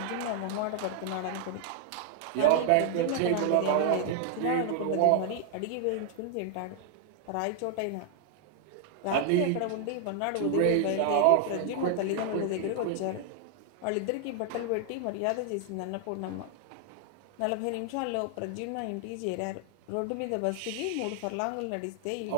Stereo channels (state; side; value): different; both; correlation 0.00